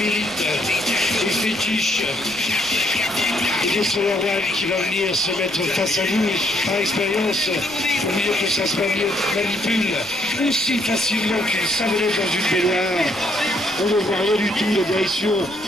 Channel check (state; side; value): noise; left; rumble, 26 dB below the sound